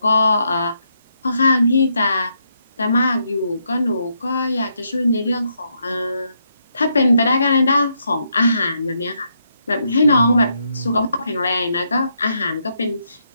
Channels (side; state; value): both; inverted; correlation -0.78